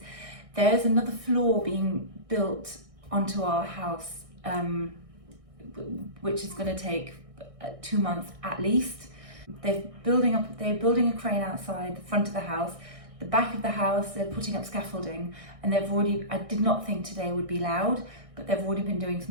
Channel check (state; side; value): late; left; 1.6 ms